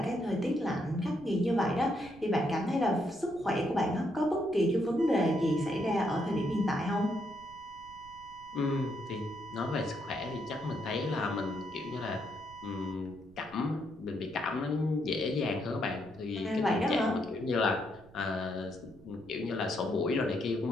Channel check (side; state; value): right; noise; rumble, 23 dB below the sound